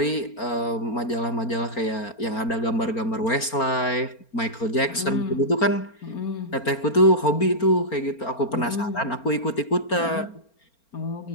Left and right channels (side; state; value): right; late; 4.4 ms